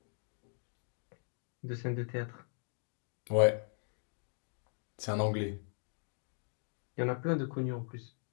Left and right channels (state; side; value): silent; right; digital silence